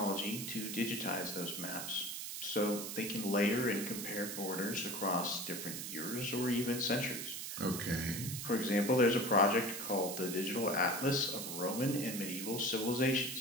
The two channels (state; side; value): noise; right; hiss, 6 dB below the sound